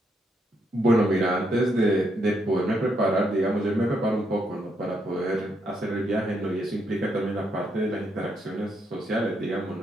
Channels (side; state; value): both; normal; correlation 0.77